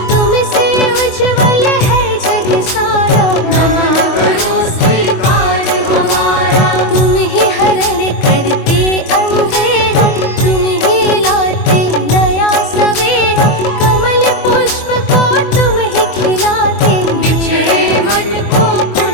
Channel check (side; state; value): right; late; 24 ms